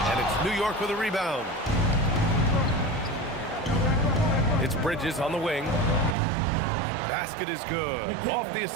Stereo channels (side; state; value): left; drops out; at 6.2 s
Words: And it's New York with a rebound. It's Bridges on the wing. Basket is good. Off the